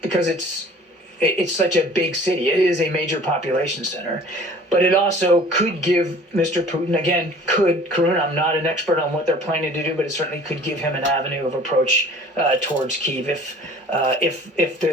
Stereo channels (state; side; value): normal; both; correlation 0.48